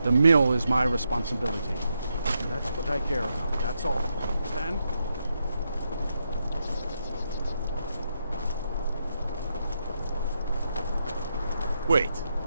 The mill is my responsibility. That's what I care about. That's all. Understand? Wait.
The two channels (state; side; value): inverted; both; correlation -0.83